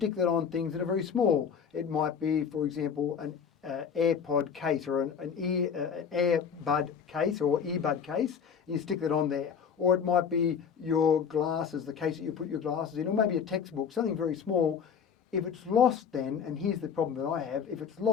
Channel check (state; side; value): quieter; right; 7.0 dB